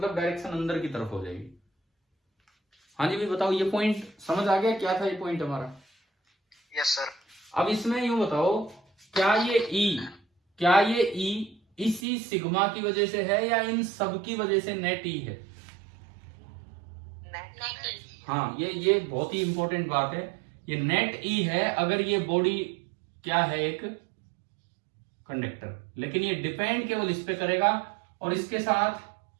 डायरेक्शन अंदर की तरफ हो जाएगी। हाँ जी, भी बताओ, ये पॉइंट समझ आ गया? क्या था ये पॉइंट हमारा? Yes sir. अब इसमें यूं बताओ, क्या ये ई इसी सिग्मा की वजह से है या इन सब की वजह से नेट ई है? हाँ, ये बहुत ही इंपॉर्टेंट बात है, ये नेट ई है अगर ये बॉडी क्या है, एक कंडक्टर। लेकिन ये डिपेंड केवल इस पे करेगा, और इसके साथ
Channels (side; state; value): left; drops out; at 12.0 s